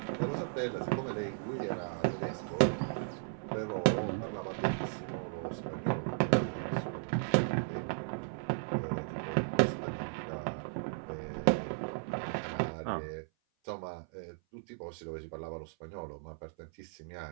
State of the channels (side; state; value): left; silent; 54 dB below the other